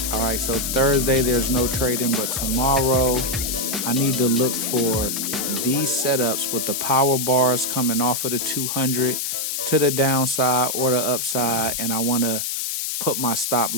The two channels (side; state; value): left; noise; hiss, 2 dB below the sound